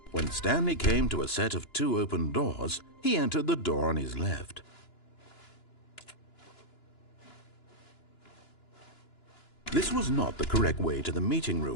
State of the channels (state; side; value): late; right; 2.9 ms